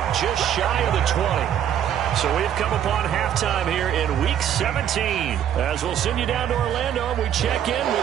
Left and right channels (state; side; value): quieter; left; 9.9 dB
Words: just shy of the 20. So we've come upon halftime here in Week 17. As we'll send you down to Orlando, we check in